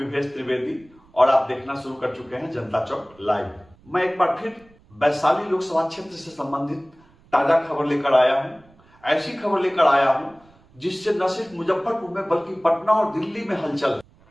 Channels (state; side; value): noise; right; rumble, 29 dB below the sound